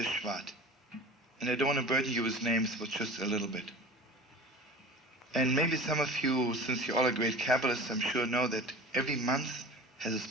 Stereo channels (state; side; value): normal; both; correlation 0.37